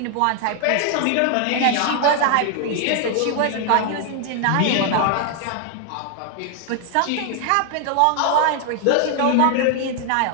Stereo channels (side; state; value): both; different; correlation 0.00